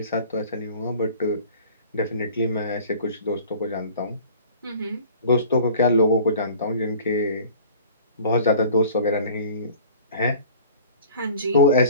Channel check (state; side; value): inverted; both; correlation -0.47